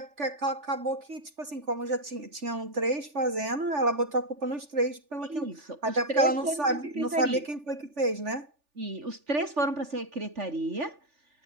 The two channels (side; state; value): left; late; 3.4 ms